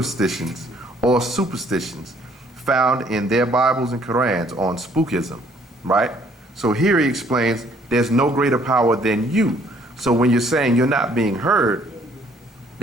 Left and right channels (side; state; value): both; normal; correlation 0.62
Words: or superstitions found in their Bibles and Qurans on spookism, right? So here he explains there's no greater power than you. So when you're saying you're not being heard,